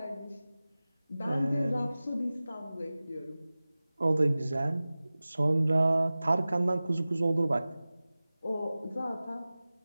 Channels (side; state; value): both; inverted; correlation -0.97